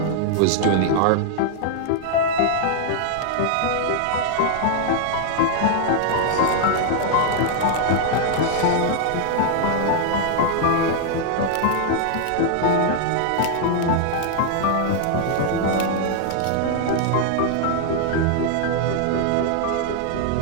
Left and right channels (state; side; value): different; both; correlation 0.00